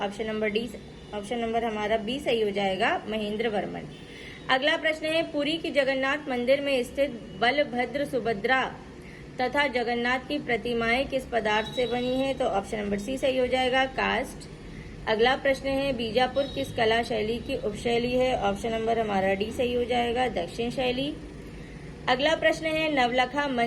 ऑप्शन नंबर हमारा बी सही हो जाएगा, महेंद्र वर्मन। अगला प्रश्न है, पुरी की जगन्नाथ मंदिर में स्थित बलभद्र, सुभद्रा तथा जगन्नाथ की प्रतिमाएं किस पदार्थ से बनी है? तो ऑप्शन नंबर सी सही हो जाएगा, कास्ट। अगला प्रश्न है, बीजापुर किस कला शैली की उपशैली है? ऑप्शन नंबर हमारा डी सही हो जाएगा, दक्षिण शैली। अगला प्रश्न है, नवलखा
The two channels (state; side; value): identical; both; correlation 1.00